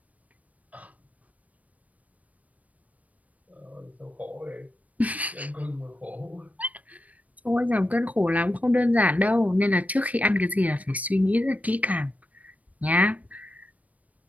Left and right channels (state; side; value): late; left; 0.071 ms